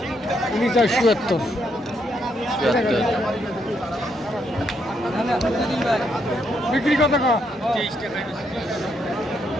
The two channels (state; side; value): normal; both; correlation 0.76